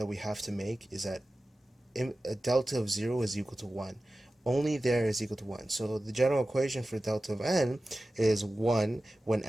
we have to make is that a delta of 0 is equal to 1. Only there is equal to 1. So the general equation for delta of n is 1 when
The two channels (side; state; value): both; normal; correlation 0.95